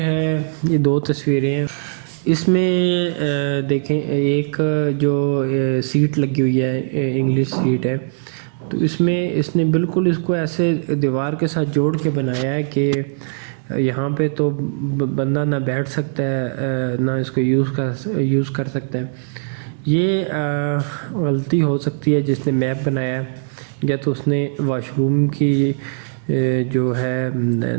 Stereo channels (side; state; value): left; silent; digital silence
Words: یہ دو تصویریں ہیں۔ اس میں دیکھیں، ایک جو سیٹ لگی ہوئی ہے، انگلش سیٹ ہے، تو اس میں اس نے بالکل اس کو ایسے دیوار کے ساتھ جوڑ کے بنایا ہے کہ یہاں پہ تو بندہ نہ بیٹھ سکتا ہے نہ اس کو یوز کر سکتا ہے۔ یہ غلطی ہو سکتی ہے جس نے میپ بنایا ہے، یا تو اس نے واش روم کی جو ہے